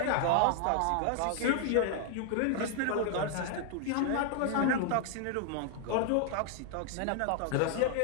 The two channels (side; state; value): both; different; correlation 0.00